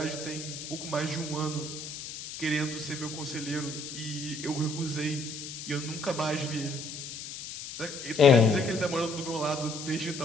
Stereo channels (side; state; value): left; noise; hiss, 9 dB below the sound